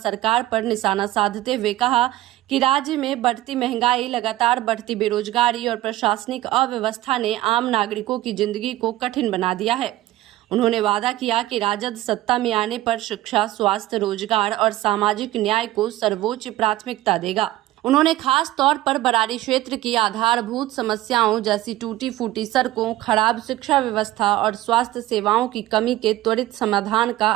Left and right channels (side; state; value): left; quieter; 15.8 dB